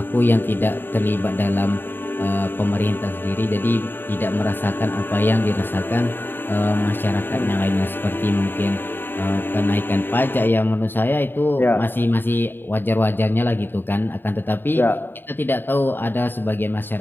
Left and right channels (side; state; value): right; late; 0.096 ms